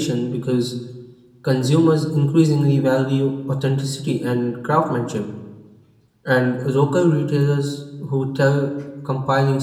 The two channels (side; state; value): both; identical; correlation 1.00